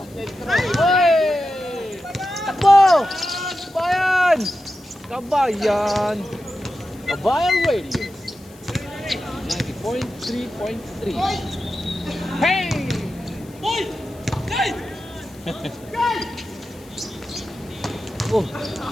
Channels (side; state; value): left; noise; hiss, 25 dB below the sound